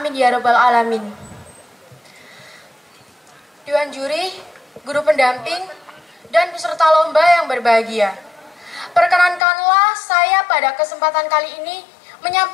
ya rabbal alamin. Dewan Juri, guru pendamping, dan peserta lomba yang berbahagia. Perkenankanlah saya pada kesempatan kali ini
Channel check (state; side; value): drops out; right; at 9.4 s